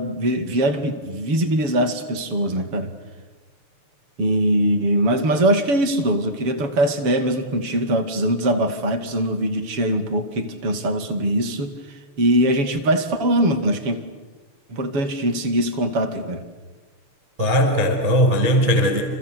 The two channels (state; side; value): late; left; 7.1 ms